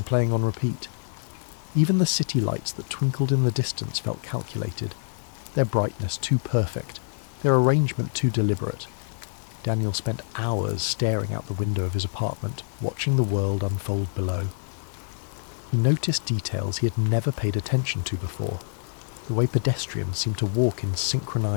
playing on repeat. Even the city lights that twinkled in the distance felt calculated, their brightness too perfect, their arrangement too deliberate. Daniel spent hours staring out the window of his apartment, watching the world unfold below. He noticed details he had never paid attention to before. The way pedestrians seemed to walk in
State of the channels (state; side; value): silent; right; 61 dB below the other